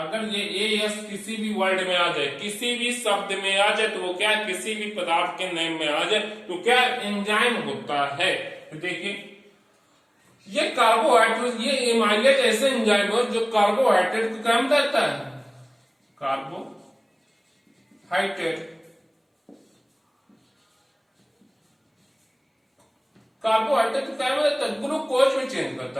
ये एएस किसी भी वर्ड में आ जाए, किसी भी शब्द में आ जाए, तो वो क्या, किसी भी पदार्थ के नेम में आ जाए, तो क्या एंजाइम होता है। देखिए ये कार्बोहाइड्रेट, ये एमाइलेज ऐसे एंजाइम है जो कार्बोहाइड्रेट को क्या करता है, कार्बोहाइड्रेट को क्या करता है, ग्लूकोज में चेंज करता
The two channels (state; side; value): identical; both; correlation 1.00